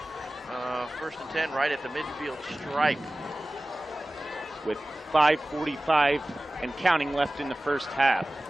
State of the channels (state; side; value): normal; both; correlation 0.97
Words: 1st and 10 right at the midfield stripe. With 5:45 and counting left in the first half.